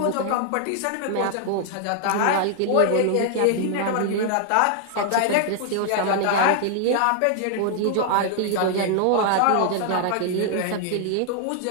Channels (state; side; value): different; both; correlation 0.00